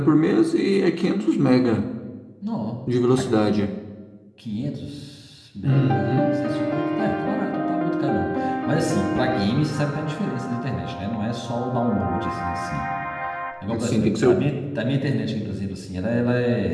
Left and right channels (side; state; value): both; identical; correlation 1.00